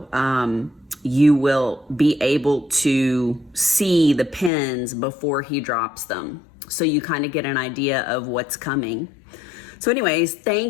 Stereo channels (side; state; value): right; drops out; at 4.5 s